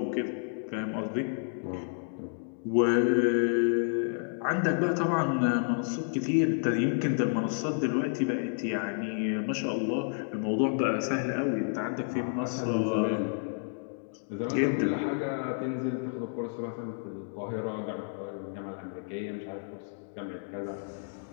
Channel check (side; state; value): right; silent; digital silence